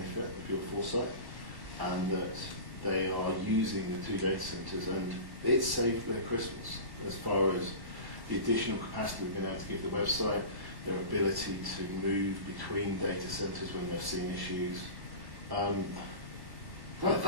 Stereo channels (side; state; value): left; late; 1.1 ms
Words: of your foresight, and that they are using the 2 data centres, and it's saved their Christmas as far as the additional capacity we've been able to give the website, their ability to move between data centres when they've seen issues.